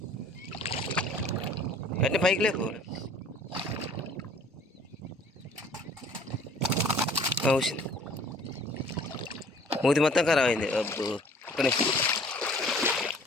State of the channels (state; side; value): normal; both; correlation 0.53